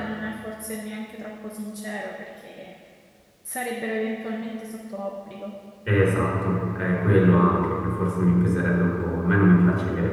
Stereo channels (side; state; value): both; identical; correlation 1.00